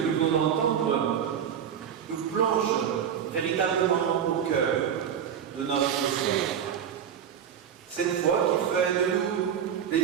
nous venons d'entendre, nous plonge véritablement au cœur de notre foi. Cette foi qui fait de nous des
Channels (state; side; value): quieter; left; 8.5 dB